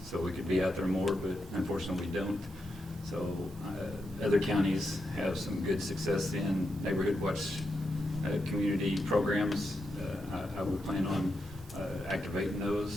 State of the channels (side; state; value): both; normal; correlation 0.85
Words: so we could be out there more, but unfortunately we don't. So other counties have some good success in neighborhood watch community programs. I would plan on activating